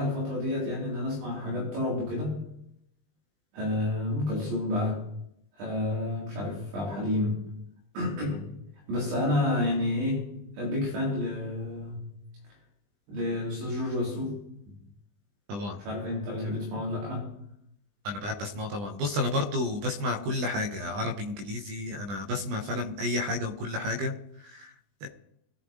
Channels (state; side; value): late; left; 20 ms